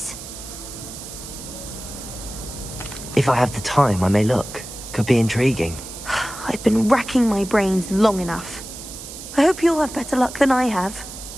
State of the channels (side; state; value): right; noise; hiss, 12 dB below the sound